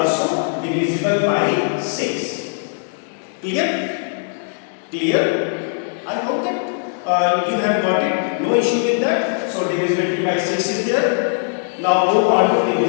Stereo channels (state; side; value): silent; right; 66 dB below the other